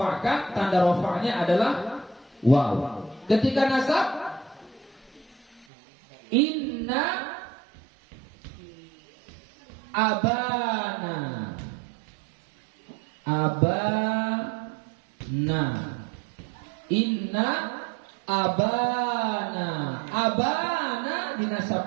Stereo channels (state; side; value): drops out; left; at 5.7 s